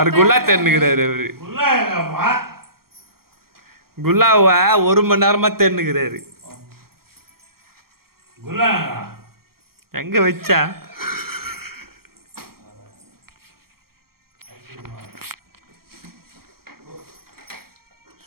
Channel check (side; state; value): left; late; 0.94 ms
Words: குல்லா தேர்னுக்கிறாரு அவரு குல்லாவை 1 மணி நேரமா தேர்னுக்கிறாரு எங்க வச்சா